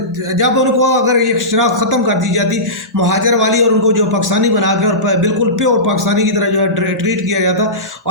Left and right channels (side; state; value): both; normal; correlation -0.19